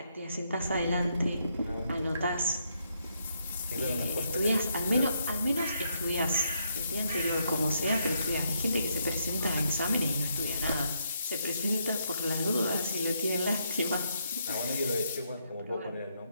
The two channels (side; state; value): both; inverted; correlation -0.76